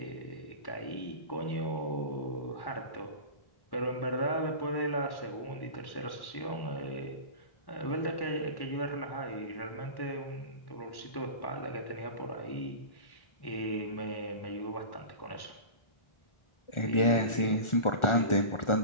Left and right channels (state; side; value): late; right; 1.4 ms